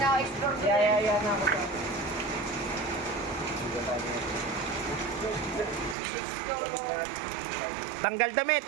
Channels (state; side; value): drops out; left; at 6.0 s